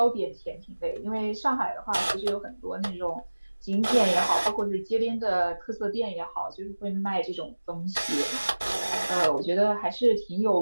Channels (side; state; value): both; inverted; correlation -1.00